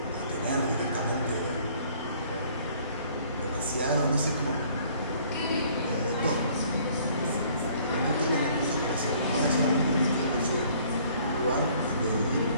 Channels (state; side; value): inverted; both; correlation -0.58